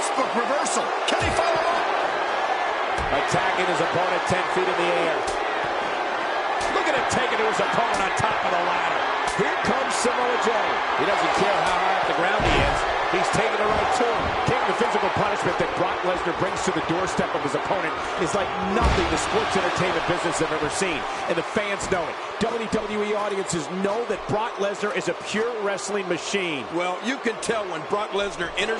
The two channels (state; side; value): identical; both; correlation 1.00